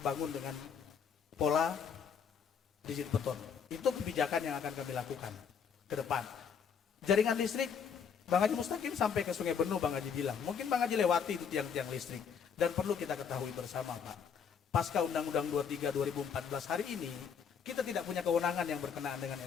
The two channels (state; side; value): quieter; right; 6.9 dB